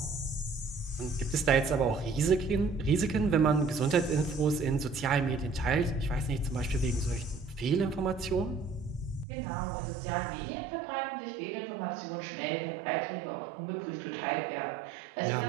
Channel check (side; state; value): left; drops out; at 9.2 s